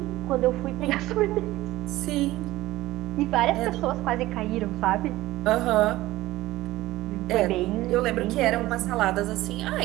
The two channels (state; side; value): quieter; left; 17.2 dB